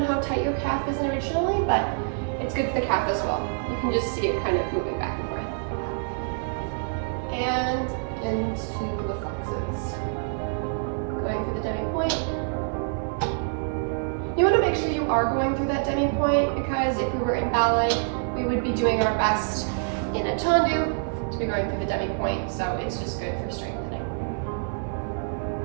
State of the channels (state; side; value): silent; left; digital silence